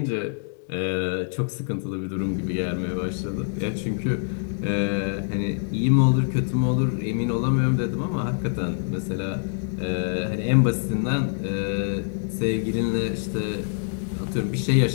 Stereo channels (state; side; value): silent; right; digital silence